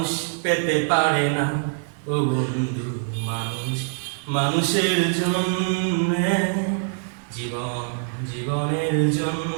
পেতে পারে না ও বন্ধু? মানুষের জন্য জীবনের জন্য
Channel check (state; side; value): silent; left; digital silence